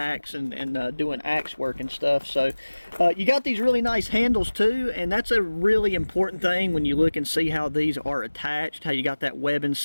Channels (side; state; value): both; inverted; correlation -1.00